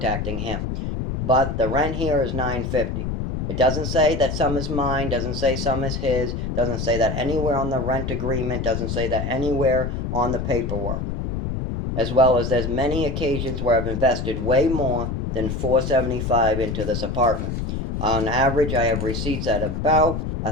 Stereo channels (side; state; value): left; noise; rumble, 3 dB below the sound